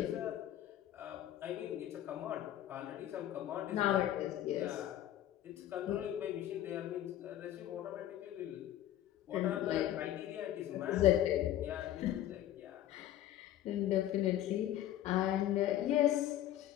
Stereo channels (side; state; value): right; quieter; 12.6 dB